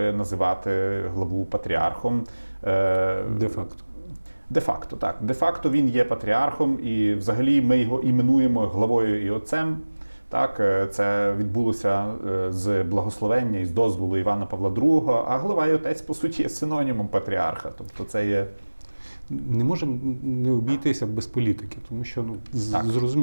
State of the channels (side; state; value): both; inverted; correlation -1.00